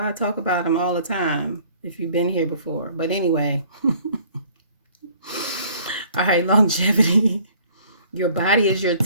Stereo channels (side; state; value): both; inverted; correlation -0.55